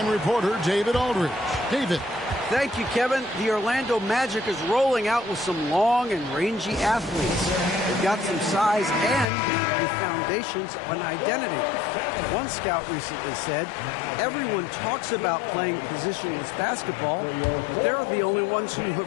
reporter, David Aldridge. David. Thank you, Kevin. The Orlando Magic is rolling out with some long and rangy athletes. They've got some size and the foundations of an identity. One scout recently said, everyone talks about playing positionless basketball, but they're the only ones who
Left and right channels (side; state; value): right; drops out; at 9.2 s